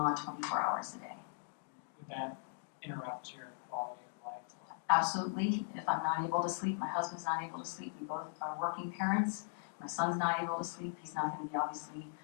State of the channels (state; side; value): silent; right; digital silence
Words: 24 hours a day. Would that interrupt your quality of life? Absolutely. If I'm not able to sleep, my husband's not able to sleep. We both are working parents. My son's not able to sleep. He's not going to be, obviously,